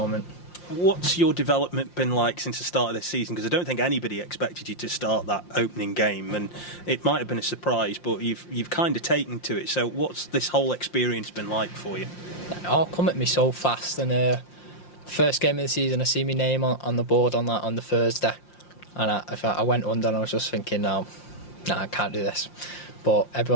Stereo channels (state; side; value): late; right; 5.7 ms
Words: What's your development been like since the start of this season? Because I don't think anybody expected you to start that opening game, and it might have been a surprise, but you've kind of taken to it. So what's this whole experience been like for you? It all come at me so fast, and the first game of the season, I see my name on the board on the Thursday, and I went under, and I was just thinking, no, I can't do this. But